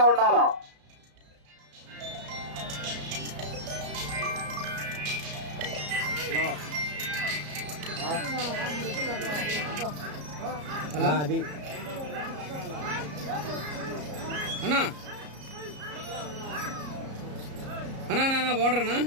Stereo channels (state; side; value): late; left; 34 ms